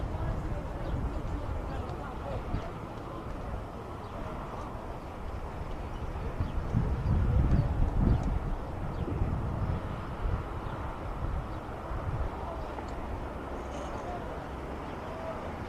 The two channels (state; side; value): identical; both; correlation 1.00